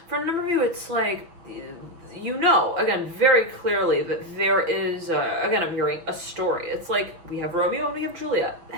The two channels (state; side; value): late; left; 6.2 ms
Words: For a number of you, it's like, you know, again, very clearly that there is, again, I'm hearing a story. It's like we have Romeo and we have Juliet.